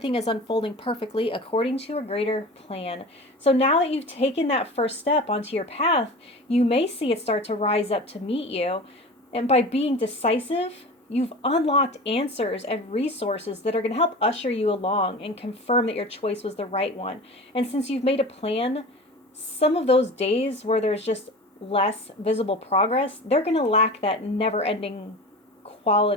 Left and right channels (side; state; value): both; normal; correlation 0.34